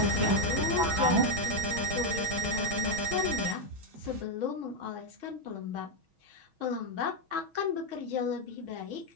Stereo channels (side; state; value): left; late; 6.2 ms